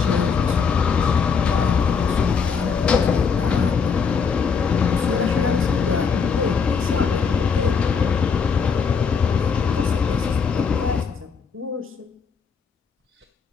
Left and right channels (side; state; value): right; quieter; 5.9 dB